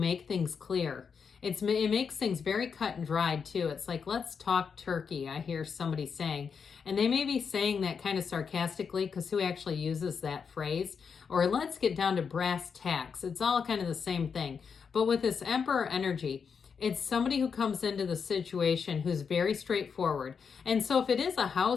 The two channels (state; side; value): quieter; right; 6.2 dB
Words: things clear. It makes things very cut and dried too. It's like, let's talk turkey, I hear somebody saying. And they may be saying that kind of sarcastically, because who actually uses that phrase? Or let's get down to brass tacks. It's all kind of the same thing. But with this Emperor energy, it's somebody who comes into the situation who's very straightforward. And so if it is a